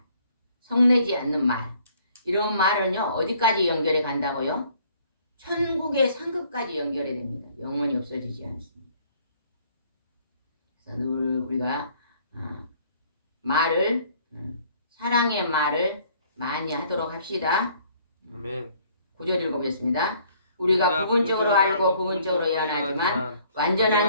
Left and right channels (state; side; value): inverted; both; correlation -0.60